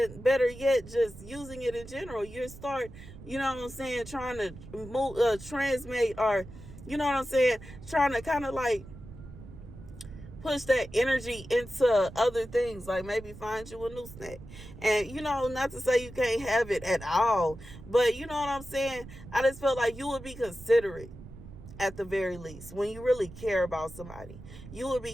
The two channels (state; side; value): noise; right; rumble, 16 dB below the sound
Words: better yet, just using it in general. You start trying to transmit, or trying to kind of like push that energy into other things, like maybe find you a new snack. And not to say you can't have it at all, but you know what I'm saying, I just feel like you would be considerate. At the very least, when you really care about somebody, you will